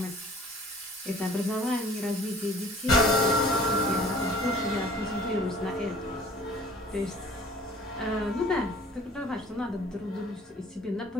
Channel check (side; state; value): both; normal; correlation 0.50